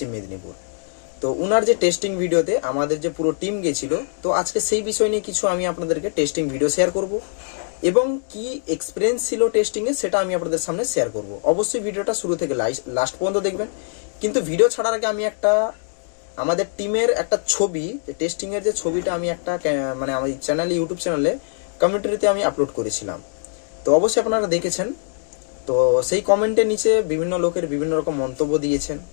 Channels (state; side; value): silent; right; digital silence